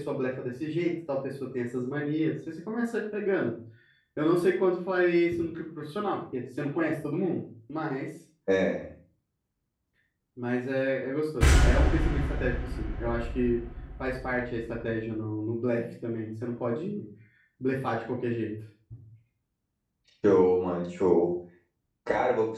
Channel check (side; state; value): both; identical; correlation 1.00